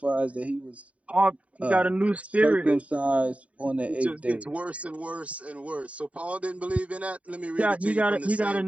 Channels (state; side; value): late; left; 0.066 ms